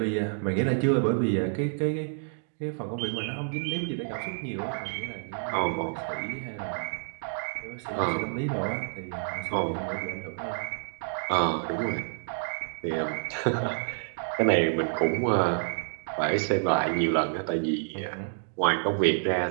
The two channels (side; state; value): left; silent; digital silence